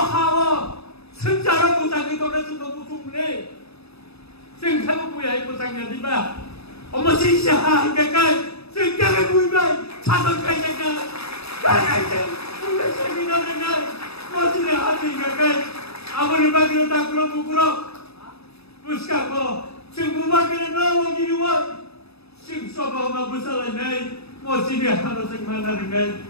hawa. Sejarah pusang itu dah sudah busuk ni. Sejarah punya pusang jadi bah. Omo sisa ikai. Sejarah punya cadang kaya kaya. Kaya kaya. Punya seminar dengan. Masih ada ikai. Awal bagi tak keluar bukurok. Puska ko. Semua kena nawa jiwa. Sing soba mabusala nai. Masih harus semana dengan.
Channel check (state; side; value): late; right; 0.78 ms